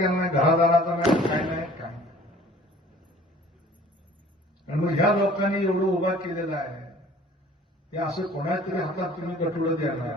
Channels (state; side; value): normal; both; correlation 0.50